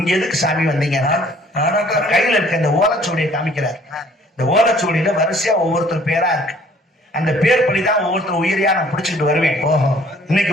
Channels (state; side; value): normal; both; correlation 0.57